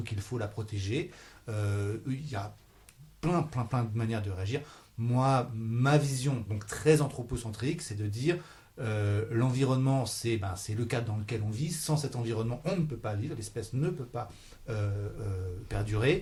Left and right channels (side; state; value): both; identical; correlation 1.00